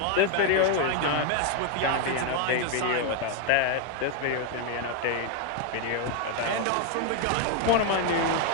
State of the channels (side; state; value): both; different; correlation 0.01